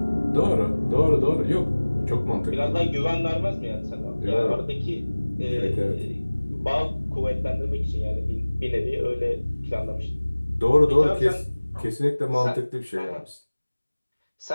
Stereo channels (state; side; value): inverted; both; correlation -1.00